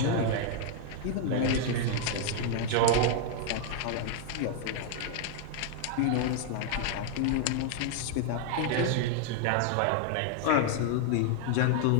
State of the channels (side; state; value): both; different; correlation 0.00